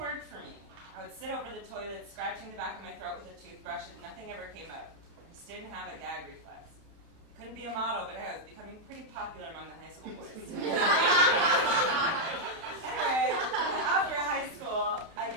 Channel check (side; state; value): left; late; 31 ms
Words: worked for me. I would sit over the toilet, scratching the back of my throat with a toothbrush, and nothing ever came out. I just didn't have a gag reflex. Couldn't be a model, but I was becoming pretty popular among the high school boys. Anyway, after high school, I